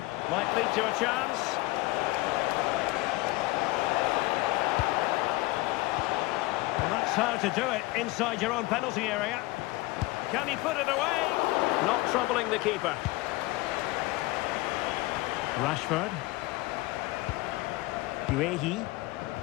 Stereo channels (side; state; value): right; quieter; 21.1 dB